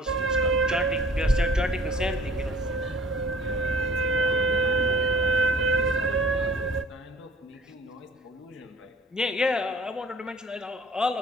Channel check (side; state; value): both; normal; correlation 0.50